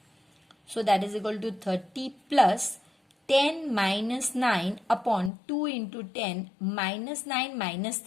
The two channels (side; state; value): right; drops out; at 5.3 s